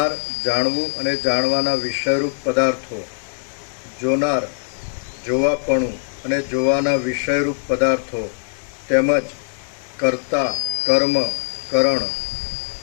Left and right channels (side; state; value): right; silent; digital silence